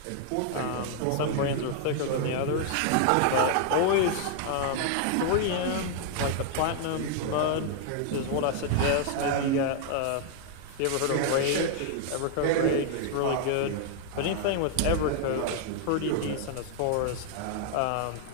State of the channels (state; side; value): different; both; correlation 0.00